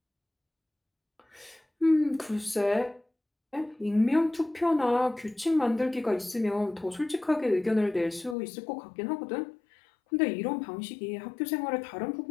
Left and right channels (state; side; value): drops out; right; at 8.3 s